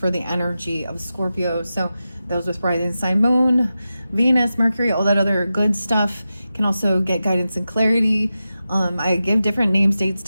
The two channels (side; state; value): both; inverted; correlation -0.92